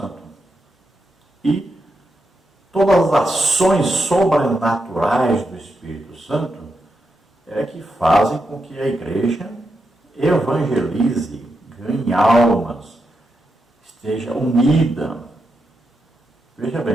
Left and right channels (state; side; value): normal; both; correlation 0.85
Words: E todas as ações sobrenaturais do Espírito Santo é que fazem com que a igreja evangelize, ganhe almas, esteja unida. Veja